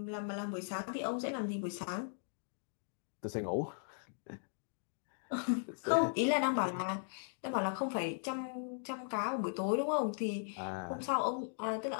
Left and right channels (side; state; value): right; silent; digital silence